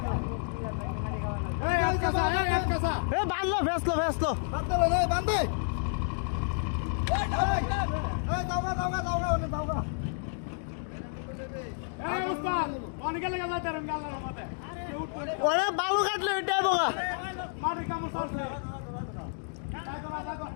বাঁধলো ভেসলো বান্ধে ওরা বালু কাটলো এটাই বোকা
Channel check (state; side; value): silent; right; digital silence